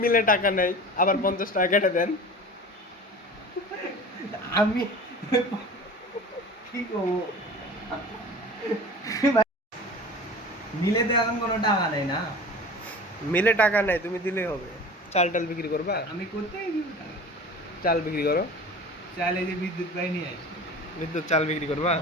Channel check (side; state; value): both; normal; correlation 0.38